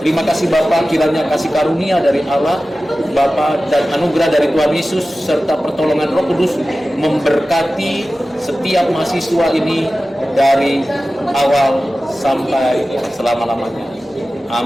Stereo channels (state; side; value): normal; both; correlation 0.95